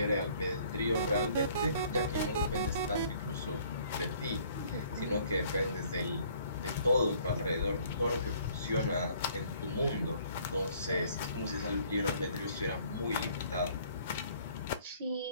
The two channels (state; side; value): inverted; both; correlation -0.59